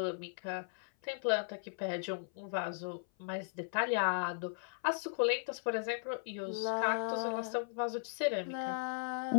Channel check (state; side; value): silent; right; 53 dB below the other